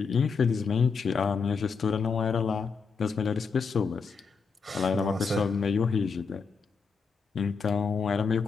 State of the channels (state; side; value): quieter; right; 5.3 dB